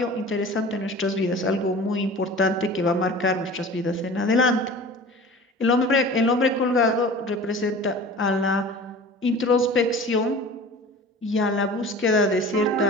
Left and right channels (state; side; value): normal; both; correlation 0.40